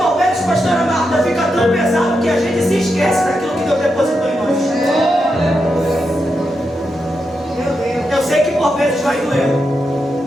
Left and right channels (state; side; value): normal; both; correlation 0.85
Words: vezes, pastora Marta, fica tão pesado que a gente se esquece daquilo que Deus depositou em nós. Eu sei que por vezes vai doer,